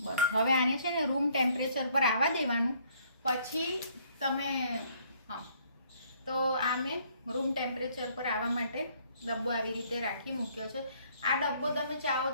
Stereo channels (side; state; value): both; inverted; correlation -0.63